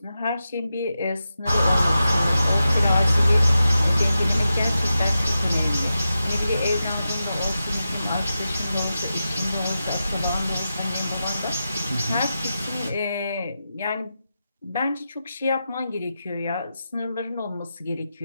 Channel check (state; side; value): inverted; both; correlation -0.90